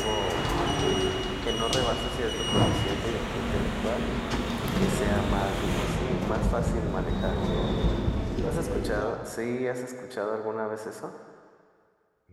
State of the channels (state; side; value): identical; both; correlation 1.00